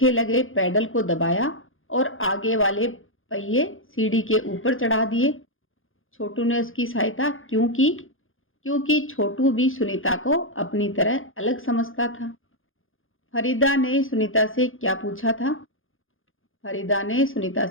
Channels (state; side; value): late; right; 0.59 ms